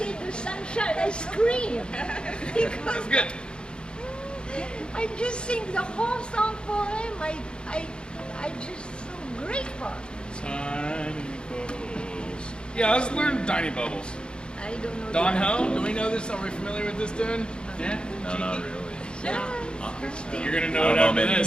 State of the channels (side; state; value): right; late; 0.051 ms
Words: the sunshine, I scream. Because That's good. I just sing the whole song for him. I just so grateful. Tiny bubbles. Yeah, let's learn Tiny Bubbles. I don't know. Don the- Ho, do we know this? Are we familiar with this tune? Yeah? No, not really. Yeah. You're gonna I know don't it know after many.